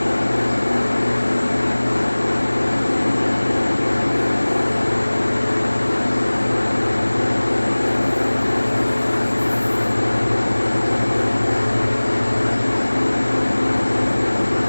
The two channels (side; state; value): both; inverted; correlation -1.00